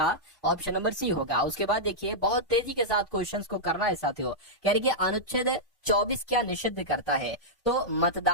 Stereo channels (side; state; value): both; normal; correlation -0.09